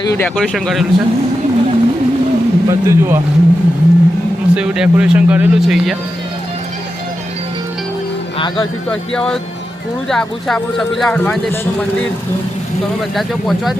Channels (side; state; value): both; normal; correlation 0.89